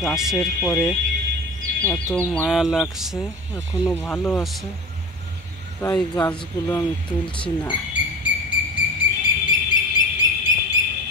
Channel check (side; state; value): both; normal; correlation 0.31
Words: গাছের পরে এত মায়া লাগছে, এখনো ভালো আছে, তাই গাছগুলো আমি তুলছি না।